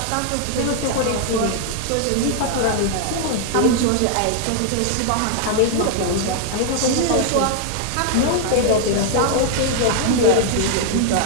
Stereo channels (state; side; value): different; both; correlation 0.00